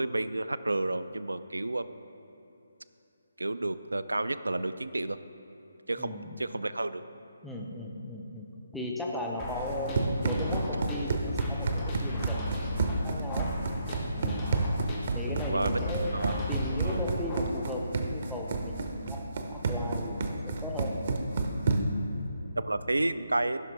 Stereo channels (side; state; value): both; inverted; correlation -0.77